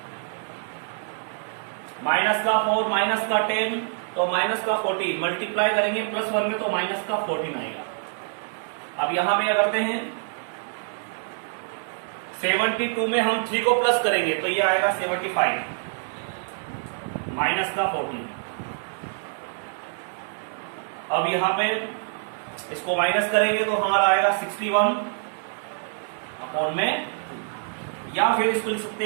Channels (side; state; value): left; silent; digital silence